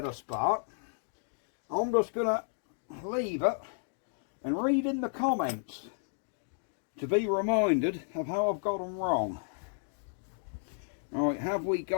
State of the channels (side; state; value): right; silent; digital silence